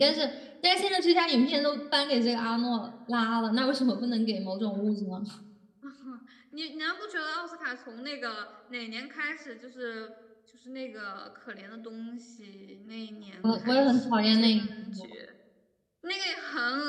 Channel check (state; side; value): identical; both; correlation 1.00